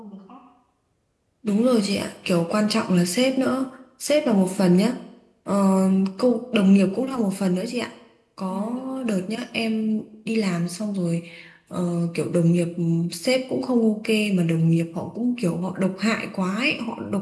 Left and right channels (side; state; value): both; identical; correlation 1.00